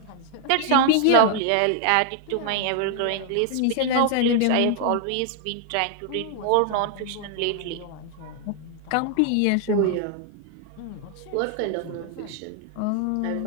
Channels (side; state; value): both; different; correlation 0.00